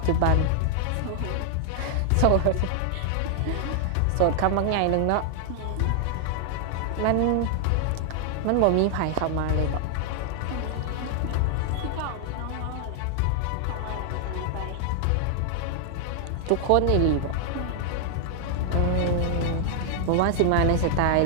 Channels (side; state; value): both; different; correlation 0.00